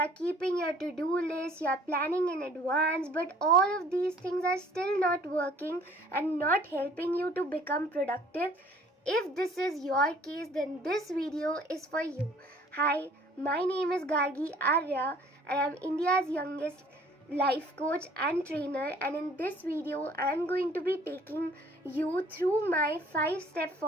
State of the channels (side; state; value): both; normal; correlation 0.55